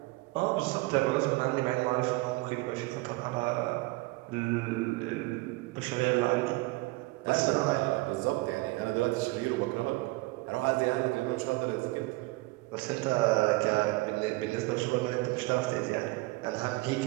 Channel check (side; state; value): left; quieter; 22.6 dB